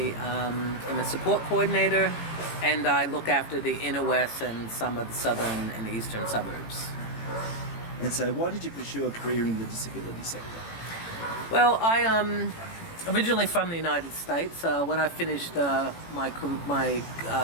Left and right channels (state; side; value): late; right; 18 ms